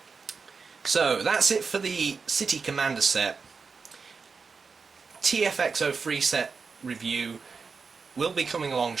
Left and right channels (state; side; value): quieter; left; 5.1 dB